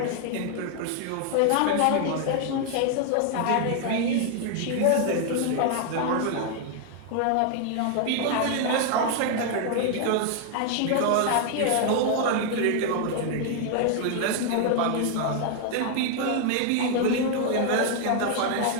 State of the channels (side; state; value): both; different; correlation 0.00